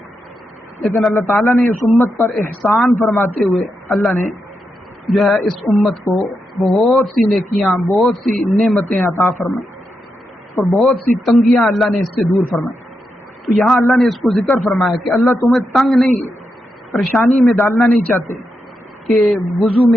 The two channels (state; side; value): normal; both; correlation 0.85